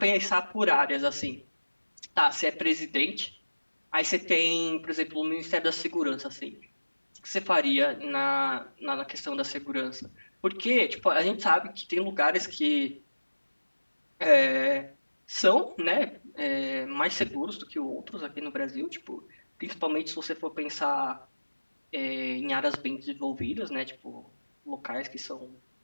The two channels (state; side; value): inverted; both; correlation -1.00